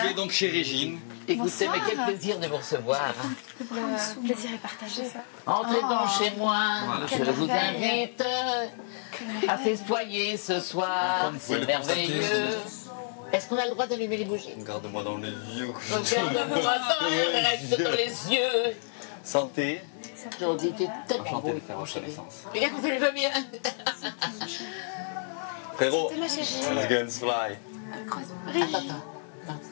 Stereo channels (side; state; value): right; silent; digital silence